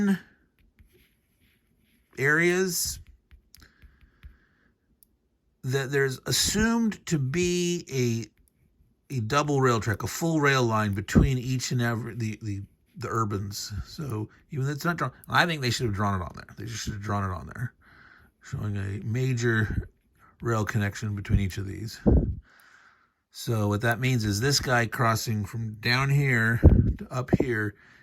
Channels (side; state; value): both; identical; correlation 1.00